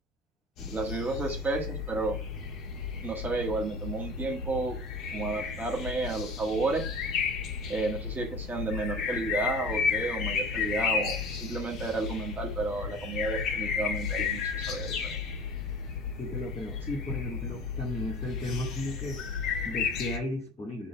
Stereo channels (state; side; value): normal; both; correlation 0.40